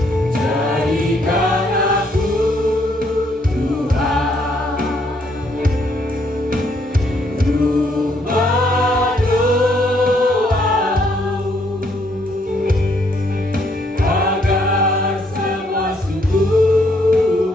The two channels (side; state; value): both; normal; correlation 0.70